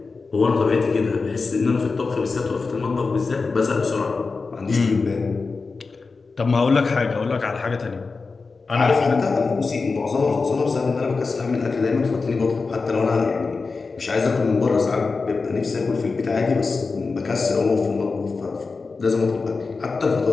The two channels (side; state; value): right; quieter; 4.3 dB